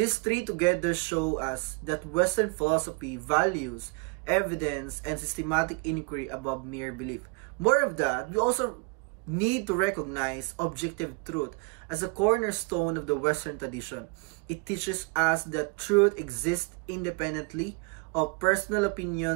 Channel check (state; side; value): quieter; left; 32.1 dB